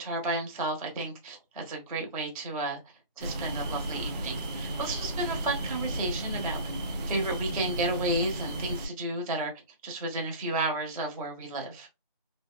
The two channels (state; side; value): inverted; both; correlation -0.33